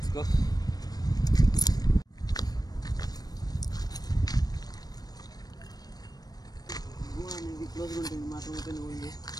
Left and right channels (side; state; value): right; late; 0.19 ms